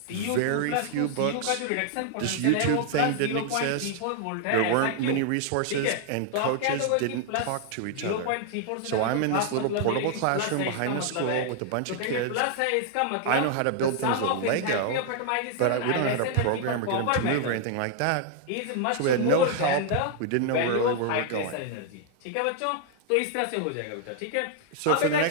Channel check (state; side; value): different; both; correlation 0.00